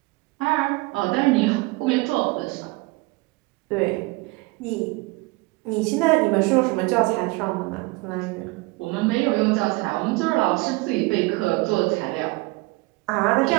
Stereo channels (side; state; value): left; quieter; 24.2 dB